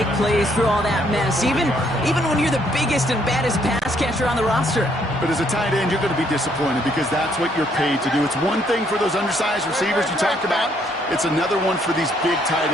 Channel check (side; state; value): both; normal; correlation 0.69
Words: plays through all that mess, even when you're the biggest and baddest pass catcher on the roster. But as a tight end, you're going to be disappointed because that's what you're paid to do. It's one thing for those undersized receivers you talked about. It's another one for these big tight